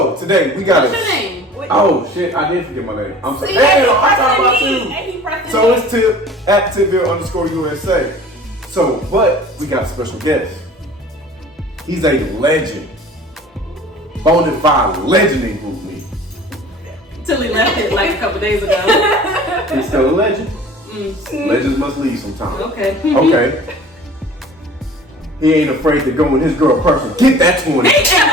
today we got What's your name? Oh shit, I did forget my name. I'm sorry. See, Damn, I'm talking about you. And he pressed So it's Tip at Tipville _USA. So, but we got a special guest. He's a legend. Bona fide legend in Group Me. Till he left it like a couple days ago. He's still a legend. Legends must leave sometime. Okay. Okay. He ain't afraid to go in his girl person. Get that 20. He ain't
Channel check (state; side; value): normal; both; correlation 0.45